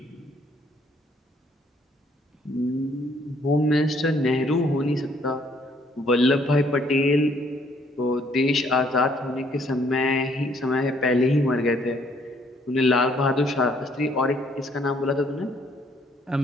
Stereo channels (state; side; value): normal; both; correlation 0.65